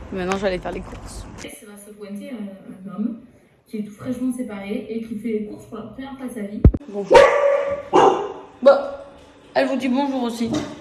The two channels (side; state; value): both; identical; correlation 1.00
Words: Maintenant, je vais aller faire les courses. C'est va se pointer un homme qui est tout fraîchement séparé et qui fait les courses pour la première fois de sa vie. Bonjour. Bon, elle vous dit bonjour aussi.